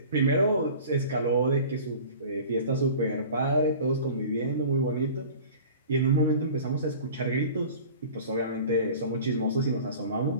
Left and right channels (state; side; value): inverted; both; correlation -0.41